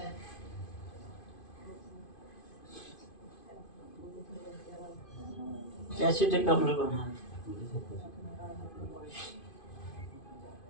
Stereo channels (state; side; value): late; right; 2.5 ms